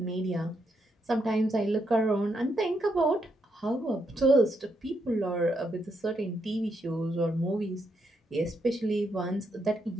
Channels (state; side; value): normal; both; correlation 0.79